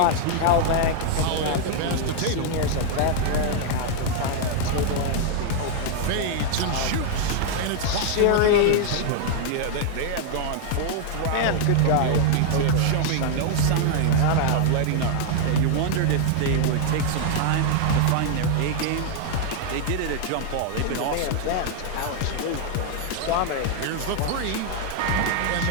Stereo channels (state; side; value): different; both; correlation 0.00